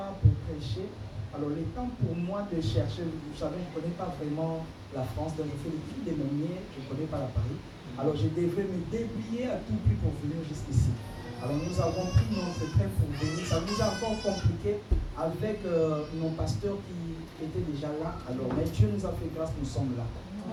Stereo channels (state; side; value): identical; both; correlation 1.00